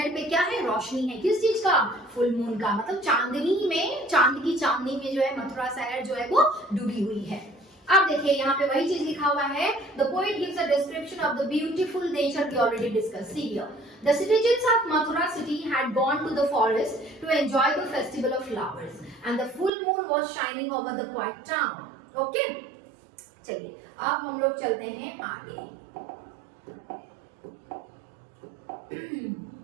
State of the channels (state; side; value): drops out; left; at 19.7 s